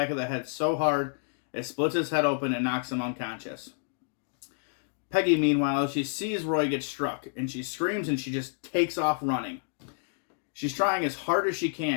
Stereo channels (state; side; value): silent; right; digital silence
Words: of the head so hard it splits his head open and knocks him unconscious. Peggy, meanwhile, she sees Roy get struck, and she screams and she just takes off running. She's trying as hard as she